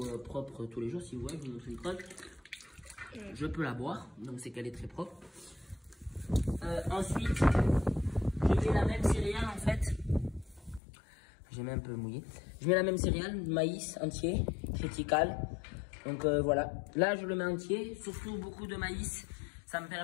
propre tous les jours. Si vous voyez, je vous montre une crotte. Je peux la boire, donc c'est qu'elle est très propre. Ensuite, je mets la même céréale en fait. J'ai mis un peu mouillé. Je mets la même céréale, maïs entier, triticale. Donc voilà. Là, je le mets entier, surtout beaucoup de maïs. Ça me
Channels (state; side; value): drops out; right; at 10.8 s